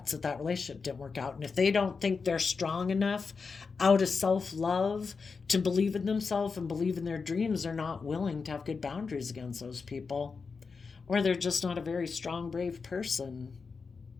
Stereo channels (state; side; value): quieter; right; 5.0 dB